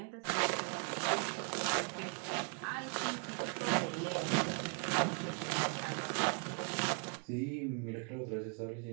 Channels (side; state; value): left; quieter; 39.4 dB